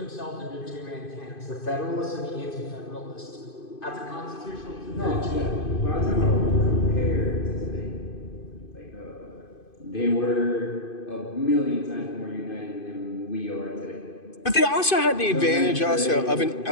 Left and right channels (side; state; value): right; late; 2.5 ms